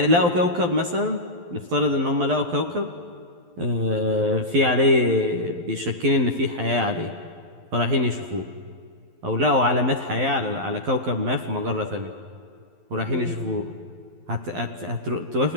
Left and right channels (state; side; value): late; left; 12 ms